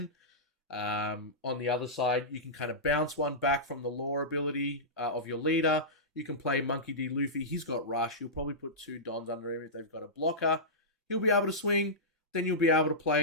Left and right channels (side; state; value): both; normal; correlation -0.15